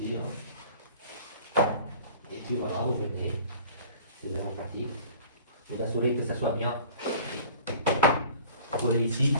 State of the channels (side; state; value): both; inverted; correlation -0.47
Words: Hein. Et puis voilà, vous venez. C'est vraiment pratique. Vous assurez que ça soit bien collé ici